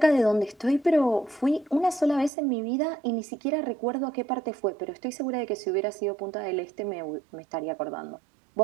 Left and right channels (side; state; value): left; drops out; at 2.3 s